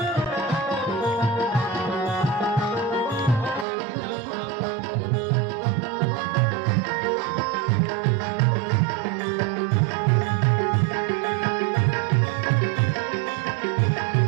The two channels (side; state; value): left; drops out; at 3.7 s